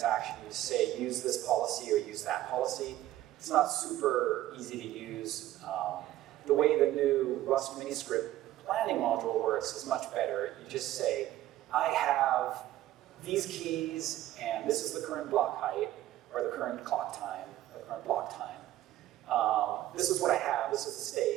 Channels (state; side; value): quieter; left; 14.3 dB